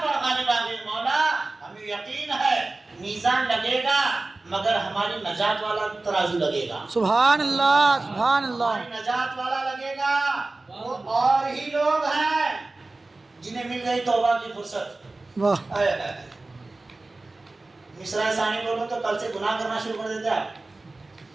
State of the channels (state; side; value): quieter; left; 3.2 dB